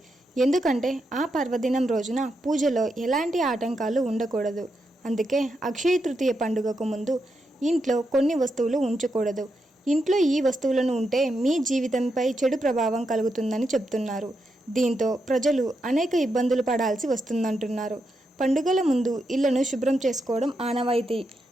ఎందుకంటే ఆ పర్వదినం రోజున పూజలో ఎలాంటి ఆటంకాలు ఉండకూడదు. అందుకే అక్షయ తృతీయ పండుగకు ముందు ఇంట్లో కొన్ని వస్తువులు ఉంచకూడదు. ఇంట్లో ఈ వస్తువులను ఉంటే మీ జీవితంపై చెడు ప్రభావం కలుగుతుందని చెప్తున్నారు. దీంతో ప్రజలు అనేక ఇబ్బందులు పడాల్సి వస్తుందంటున్నారు. పండుగల ముందు ఇళ్లను శుభ్రం చేసుకోవడం ఆనవాయితీ.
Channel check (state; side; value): normal; both; correlation 0.84